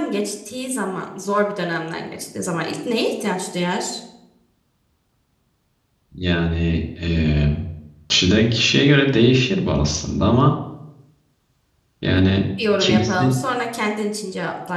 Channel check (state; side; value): identical; both; correlation 1.00